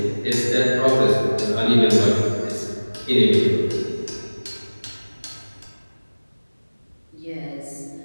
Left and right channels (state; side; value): inverted; both; correlation -1.00